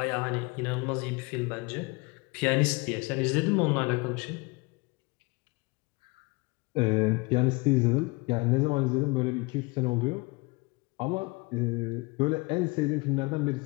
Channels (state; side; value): quieter; right; 26.4 dB